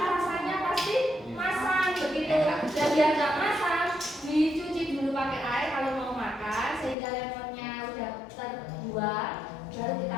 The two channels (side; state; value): right; drops out; at 7.0 s